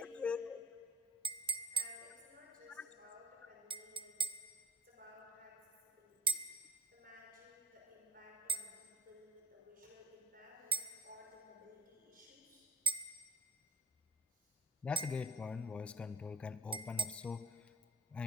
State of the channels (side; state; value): both; normal; correlation 0.56